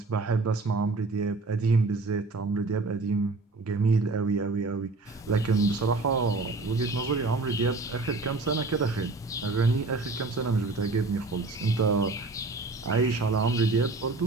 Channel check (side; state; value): left; quieter; 3.5 dB